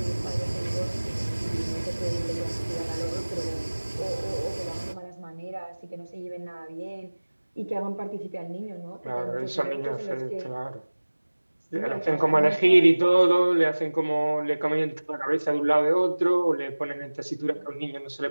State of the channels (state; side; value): inverted; both; correlation -1.00